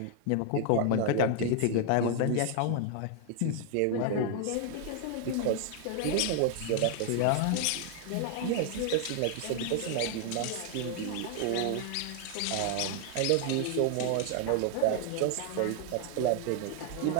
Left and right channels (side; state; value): both; different; correlation 0.00